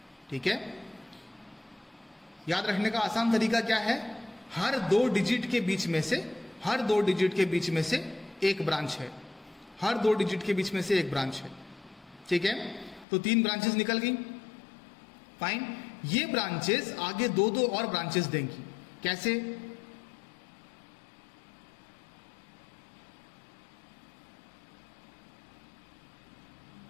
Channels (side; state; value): right; drops out; at 13.1 s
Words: ठीक है। याद रखने का आसान तरीका क्या है, हर 2 डिजिट के बीच में से, हर 2 डिजिट के बीच में से एक ब्रांच है, हर 2 डिजिट के बीच में से एक ब्रांच है, ठीक है। तो 3 ब्रांचेस निकल गई, फाइन। ये ब्रांचेस आगे 2-2 और ब्रांचेस देंगी। कैसे?